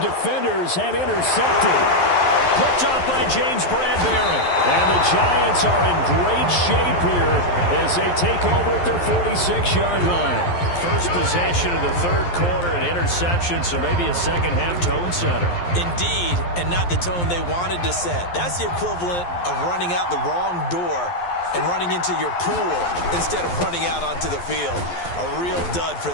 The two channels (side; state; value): right; late; 11 ms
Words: and intercepted. Picked off by James Bradbury. And the Giants are in great shape here as they take over at their 46-yard line. First possession of the third quarter, an interception, so maybe a second-half tone setter. Indeed, and not the tone they wanted to set. That's the equivalent of running out the wrong door and running into your pool instead of running out onto the field. A real dud for